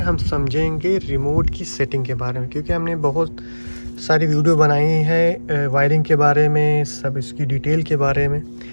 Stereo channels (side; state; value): both; inverted; correlation -1.00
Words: समझेंगे रिमोट की सेटिंग के बारे में, क्योंकि हमने बहुत सारी वीडियो बनाई है वायरिंग के बारे में, सब इसकी डिटेल के बारे में।